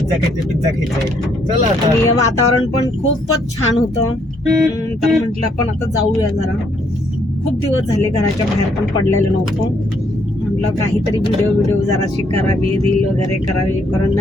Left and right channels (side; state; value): both; normal; correlation 0.70